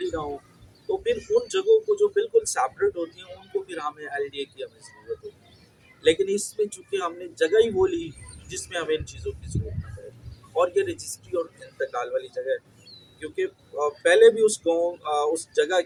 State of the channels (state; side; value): identical; both; correlation 1.00